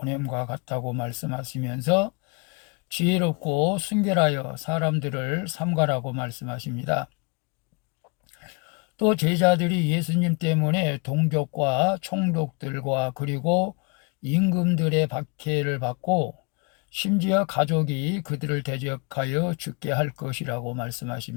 같다고 말씀하시면서 지혜롭고 순결하여 사람들을 삼가라고 말씀하십니다. 또 제자들이 예수님 때문에 동족과 총독들과 그리고 임금들의 박해를 받고 심지어 가족이 그들을 대적하여 죽게 할 것이라고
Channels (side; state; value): right; quieter; 32.6 dB